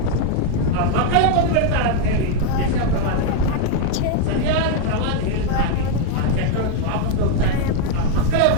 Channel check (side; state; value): both; different; correlation 0.01